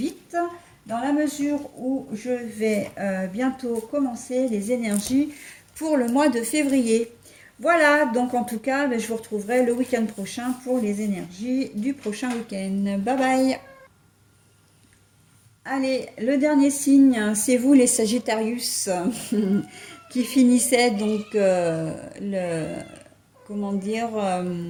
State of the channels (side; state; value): both; identical; correlation 1.00